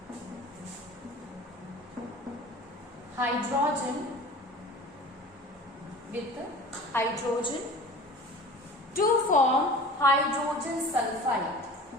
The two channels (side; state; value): both; normal; correlation 0.40